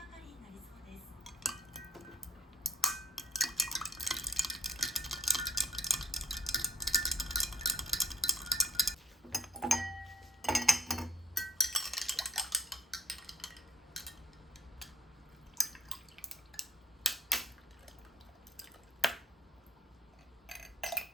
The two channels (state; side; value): normal; both; correlation 0.52